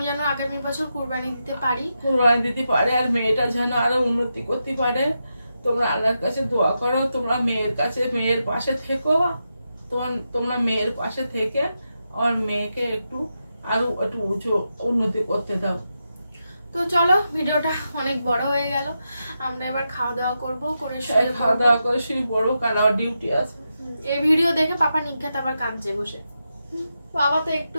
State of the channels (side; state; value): both; inverted; correlation -0.87